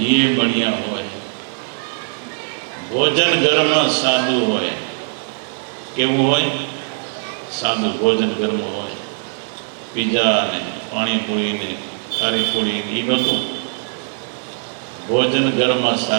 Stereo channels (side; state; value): left; silent; 66 dB below the other